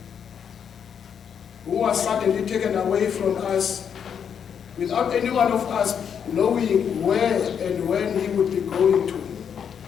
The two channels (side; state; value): right; quieter; 7.7 dB